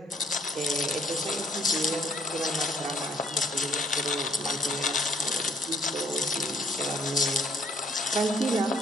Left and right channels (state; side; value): normal; both; correlation 0.64